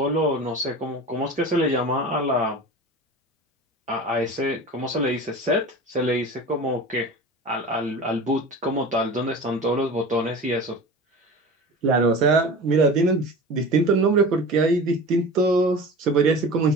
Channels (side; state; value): both; normal; correlation 0.34